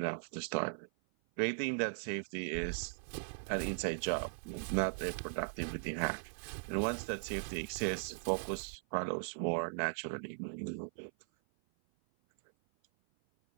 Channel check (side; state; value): left; silent; 52 dB below the other